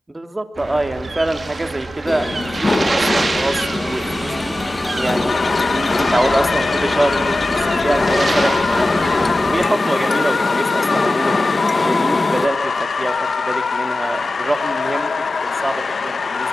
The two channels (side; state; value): both; normal; correlation 0.94